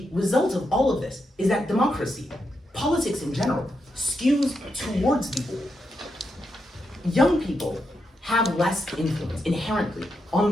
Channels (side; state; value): both; normal; correlation 0.84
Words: result of all of this is that democracy, politics in general, skews towards the old. Young people have less influence inherently on